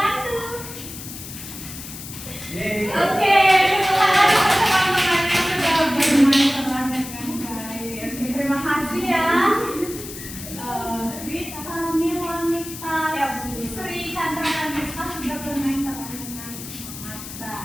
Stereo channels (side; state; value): left; noise; hiss, 11 dB below the sound